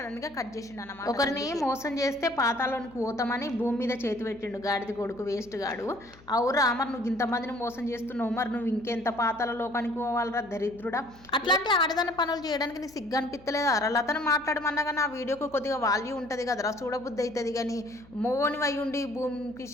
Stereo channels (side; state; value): left; noise; hum, 24 dB below the sound